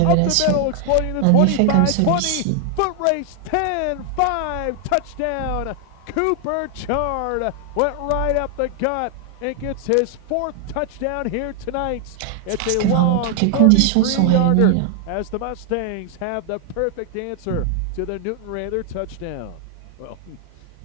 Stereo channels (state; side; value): different; both; correlation 0.00